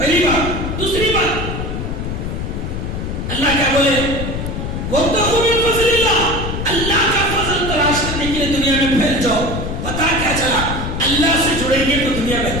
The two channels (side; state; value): left; noise; rumble, 4 dB below the sound